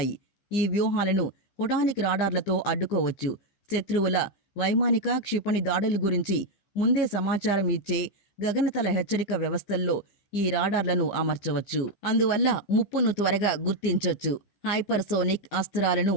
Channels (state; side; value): late; right; 15 ms